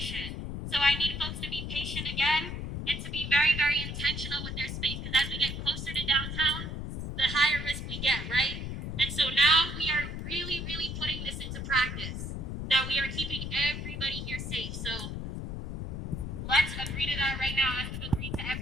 So I need folks to be patient again and to be very, very intentional with their space, because as we get closer to downtown, the higher risk we get, right? And so now we are really, really putting this into practice, that we are keeping everybody here safe. So let's agree to that right now, as we've agreed to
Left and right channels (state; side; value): noise; left; rumble, 5 dB below the sound